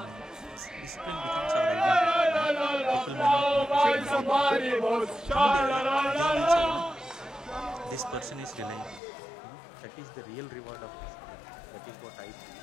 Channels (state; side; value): drops out; right; at 9.0 s